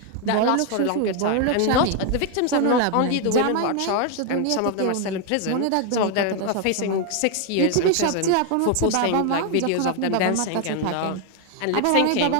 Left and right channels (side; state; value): both; different; correlation 0.00